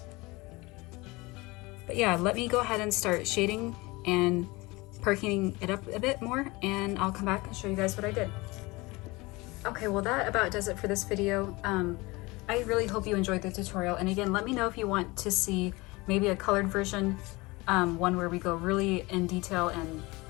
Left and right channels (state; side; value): quieter; right; 23.2 dB